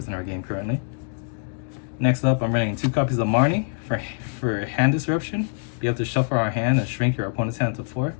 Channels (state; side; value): silent; right; digital silence